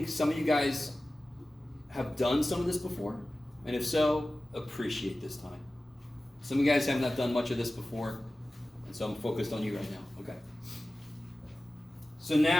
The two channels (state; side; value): normal; both; correlation 0.96